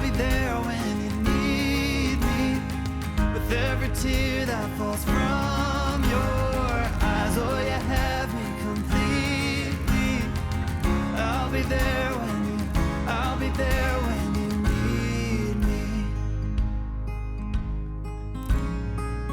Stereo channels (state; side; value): identical; both; correlation 1.00